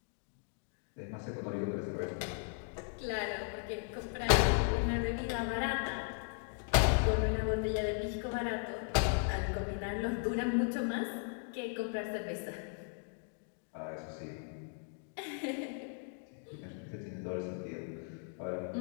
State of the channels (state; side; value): silent; right; 53 dB below the other